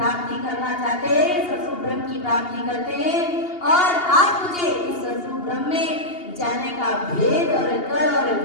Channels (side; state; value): right; late; 2.8 ms